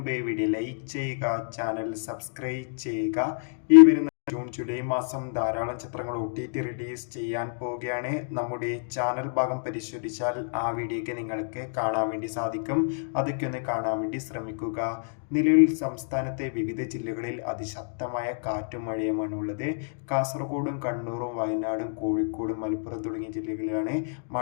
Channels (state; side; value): silent; right; digital silence